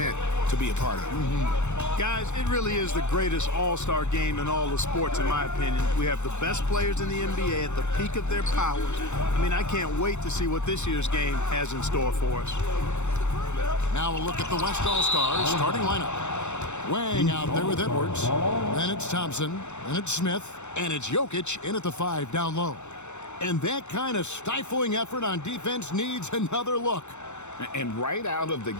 to be a part of. Guys, it really is the greatest all-star game in all the sports, in my opinion. We have the best players in the NBA at the peak of their powers. I mean, I can't wait to see what this year's game has in store for us. Now we'll look at the West All-Stars starting lineup. Wang out there with Edwards. Then it's Thompson. Then it's Smith. And it's Jokic in at the 5 down low. And that kind of stifling effort on defense needs another look. And right out of the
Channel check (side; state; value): right; late; 0.83 ms